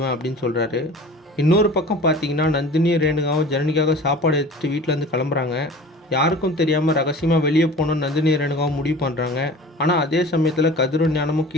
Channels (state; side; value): normal; both; correlation 0.41